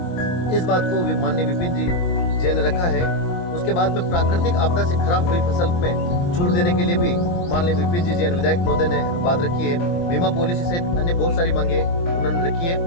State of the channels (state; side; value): late; right; 23 ms